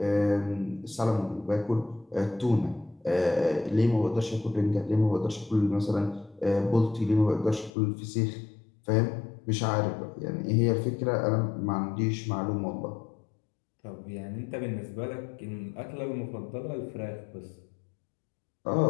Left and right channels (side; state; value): right; drops out; at 7.7 s